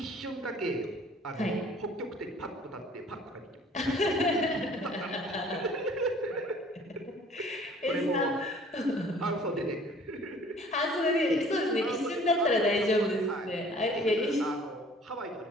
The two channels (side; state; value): both; normal; correlation 0.53